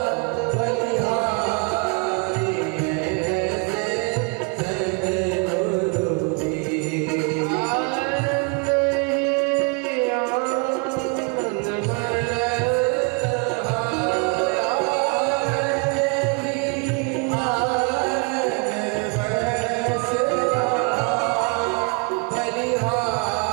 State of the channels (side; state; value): left; quieter; 32.4 dB